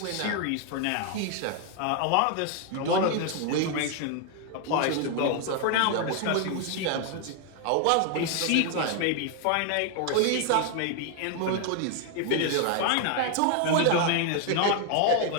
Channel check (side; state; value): both; different; correlation 0.00